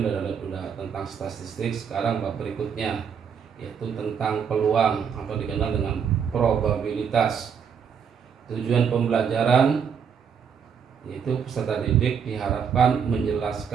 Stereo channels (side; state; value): left; quieter; 7.2 dB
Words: sudah tentang statistik, sekarang bab berikutnya yaitu tentang peluang atau dikenal dengan probabilitas. Tujuan pembelajaran yaitu peserta didik diharapkan